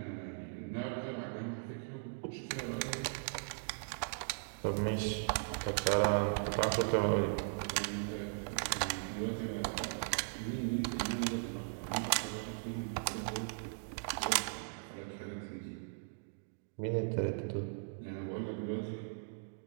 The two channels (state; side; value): silent; left; digital silence